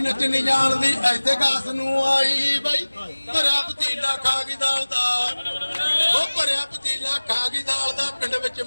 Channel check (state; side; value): inverted; both; correlation -1.00